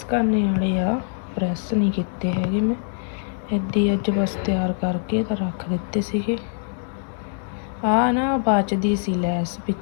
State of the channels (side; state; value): right; silent; digital silence